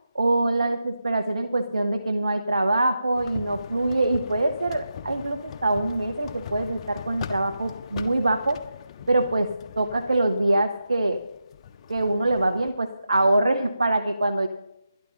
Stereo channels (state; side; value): inverted; both; correlation -0.88